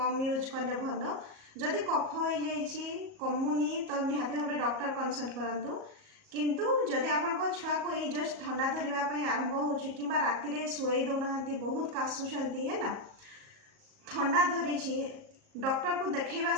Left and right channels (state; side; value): late; left; 38 ms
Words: यूज कले भल जदि कफ हो कमुनी तो निहाती भाव डॉक्टर कंसल्ट करूँ किंतु जदि आपण छुआ को यही जस्ट ठंडा धरवाई आरंभ हो कि राति शुई दौना बहुत काशुंट है ना ठंडा धरी डॉक्टर को देखा